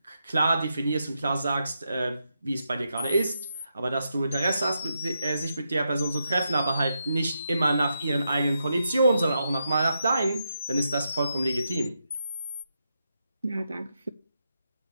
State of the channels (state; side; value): inverted; both; correlation -0.84